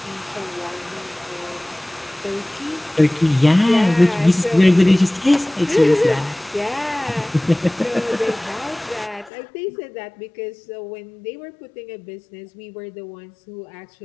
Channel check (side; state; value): right; drops out; at 9.3 s